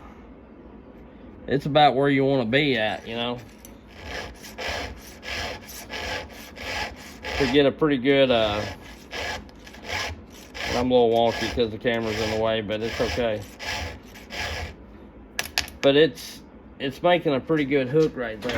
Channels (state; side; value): identical; both; correlation 1.00